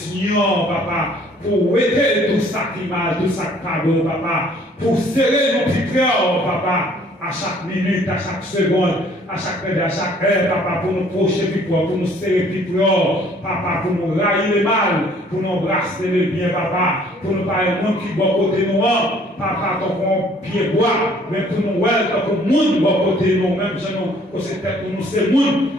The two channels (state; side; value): normal; both; correlation 0.58